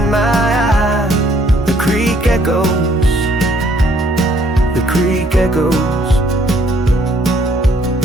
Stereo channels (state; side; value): normal; both; correlation 0.65